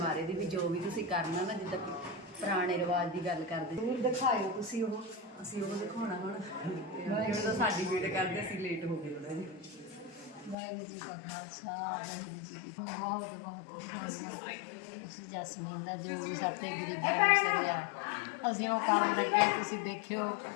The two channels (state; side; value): drops out; right; at 10.6 s